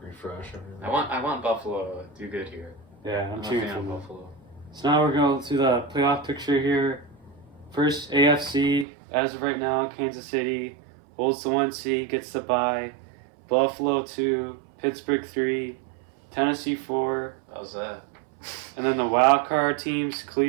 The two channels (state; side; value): drops out; left; at 8.8 s